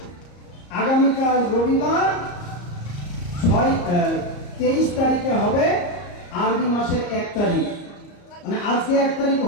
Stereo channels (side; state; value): right; late; 34 ms